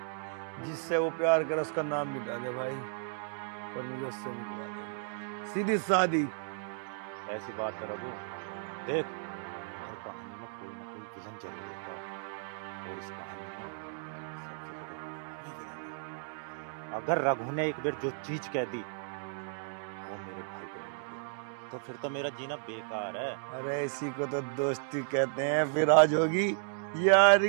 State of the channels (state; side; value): silent; left; digital silence